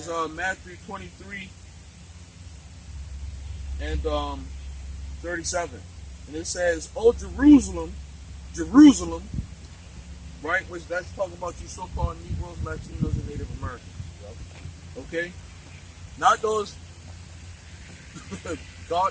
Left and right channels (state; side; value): identical; both; correlation 1.00